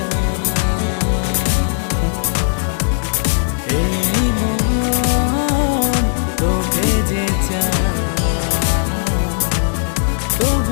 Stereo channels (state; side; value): silent; right; digital silence